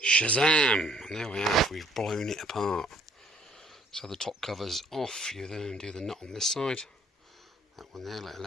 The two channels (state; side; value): normal; both; correlation 0.62